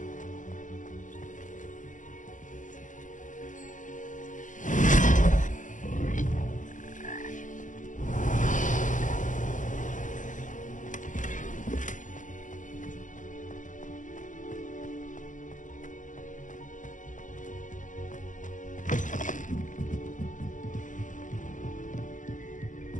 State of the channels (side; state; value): right; late; 0.37 ms